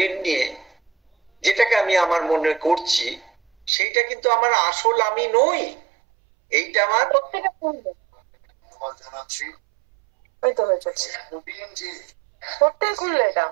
নিয়ে যেটাকে আমি আমার মনে করছি, সেইটা কিন্তু আমার আসল আমি নই। এইটা আমার খুললে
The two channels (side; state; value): left; drops out; at 3.7 s